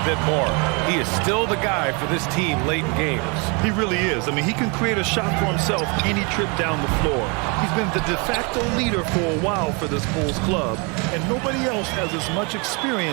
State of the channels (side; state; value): left; quieter; 31.8 dB